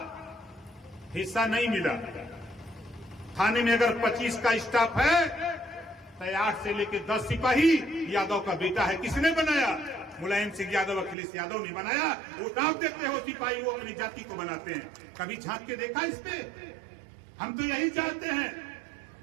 हिस्सा नहीं मिला। थाने में अगर 25 का स्टाफ है तो 8 से लेकर 10 सिपाही यादव का बेटा है। किसने बनाया? मुलायम सिंह यादव, अखिलेश यादव ने बनाया। वो नाम देते हो सिपाही, वो अपनी जाति को बनाते हैं। कभी झांक के देखा इस पे? हम तो यही चाहते हैं,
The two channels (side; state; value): left; drops out; at 11.2 s